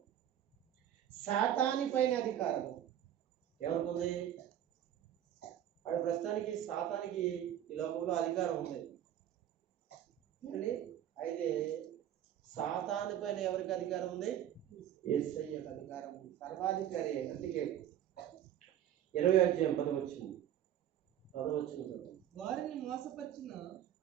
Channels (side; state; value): left; quieter; 10.9 dB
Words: సాతాని పైన అధికారం ఎవరికి ఉంది? వాడి ప్రస్తుతానికి సాతానికి ఈ లోకంలో అధికారం ఉంది అండి. అయితే సాతాను పైన ఎవరికి అధికారం ఉంది? యేసయ్యకు అధికారం ఉంది. సర్వాధికారి. అందుకే 20వ అధ్యాయం 10వ వచనం వారిని